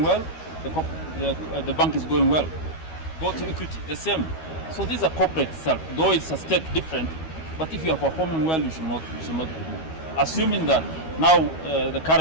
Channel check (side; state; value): right; late; 13 ms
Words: well, the bank is going well. Go to Equity, the same. So these are corporate self, though it's a state different, but if you are performing well, you should not be removed. Assuming that now the